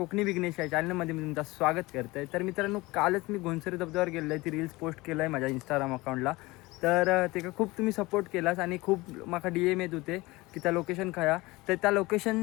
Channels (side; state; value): right; quieter; 21.6 dB